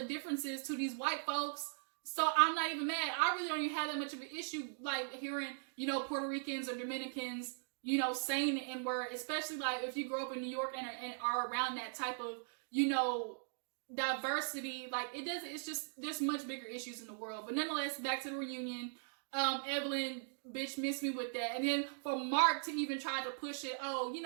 differences to these white folks. So I'm not even mad. I really don't even have that much of an issue, like hearing, Puerto Ricans or Dominicans, saying the N-word, especially like if you grow up in New York and are around that type of, diversity. Like it's just, there's much bigger issues in the world. But nonetheless, back to the reunion. Evelyn, bitch, missed me with that. And then for Mark to even try to push it,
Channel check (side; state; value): left; silent; digital silence